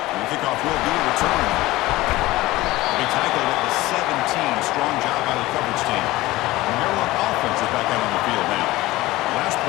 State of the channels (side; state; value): right; quieter; 18.4 dB